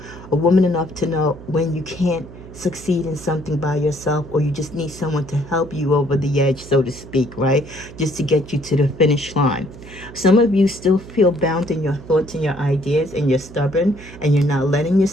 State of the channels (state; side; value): noise; right; hum, 16 dB below the sound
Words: a woman enough to know when you can't succeed in something by yourself, or you just need someone to help you over the edge, so to speak, right? Just to get you to the finish line. Some of you still feel bound in your thoughts and your ideas, and you're stubborn and you're not letting